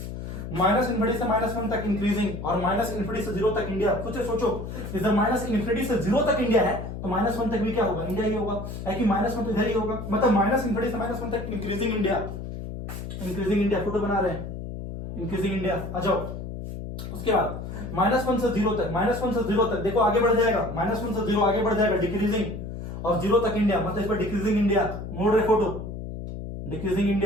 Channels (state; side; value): noise; left; hum, 8 dB below the sound